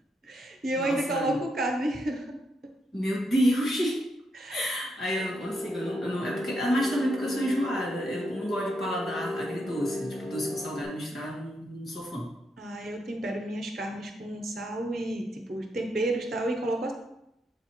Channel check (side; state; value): both; normal; correlation 0.80